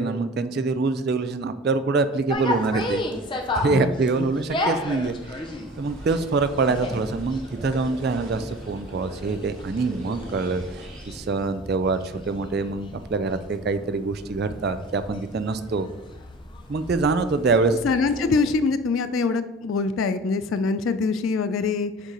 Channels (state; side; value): normal; both; correlation 0.41